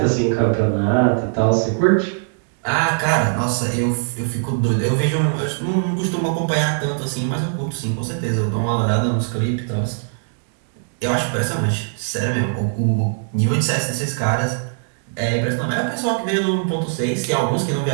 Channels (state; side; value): silent; left; digital silence